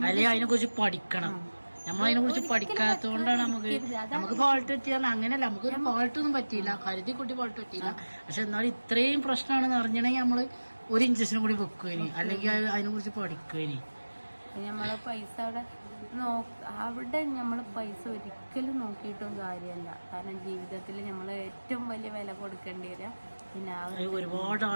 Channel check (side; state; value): both; inverted; correlation -1.00